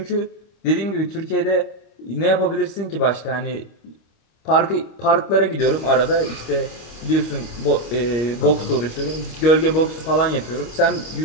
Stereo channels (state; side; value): late; right; 26 ms